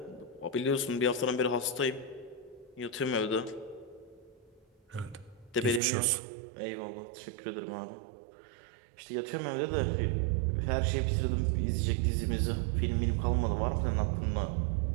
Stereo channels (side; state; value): left; drops out; at 5.8 s